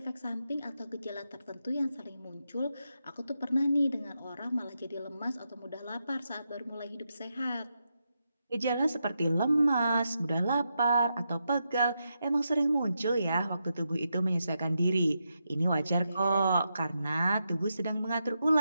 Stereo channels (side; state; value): both; inverted; correlation -0.85